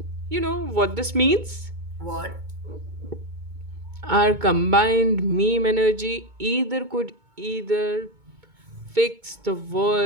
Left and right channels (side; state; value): left; late; 2.2 ms